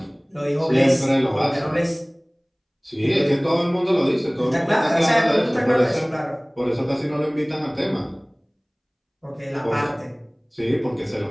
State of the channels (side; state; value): both; identical; correlation 1.00